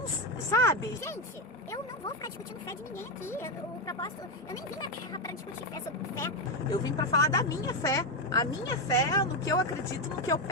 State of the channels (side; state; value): both; normal; correlation 0.09